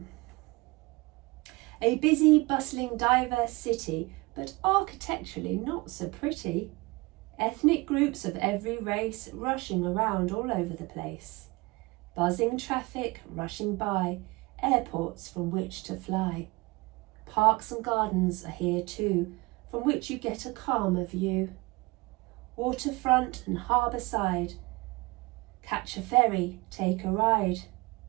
A busy, bustling, diverse city, but architecturally not so pretty. Ethnic groups of every race rushing around all over the place. Buzzing traffic rushing by, airports from which to fly. Parks and gardens are here too, from which you get a calmer view. Waterfront and harbour side. Catch a ferry, take a ride.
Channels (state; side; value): quieter; left; 23.6 dB